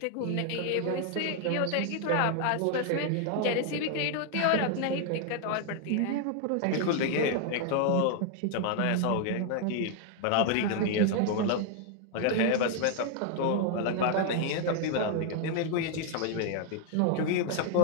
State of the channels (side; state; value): both; different; correlation 0.00